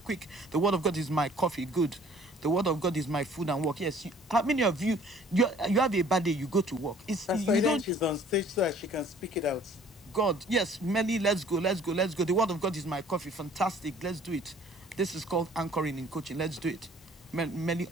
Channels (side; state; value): both; normal; correlation 0.54